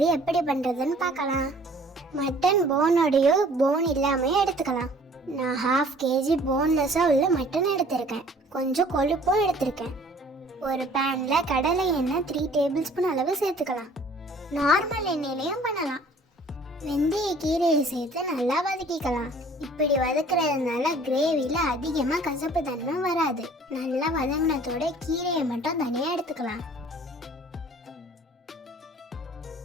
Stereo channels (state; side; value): normal; both; correlation 0.53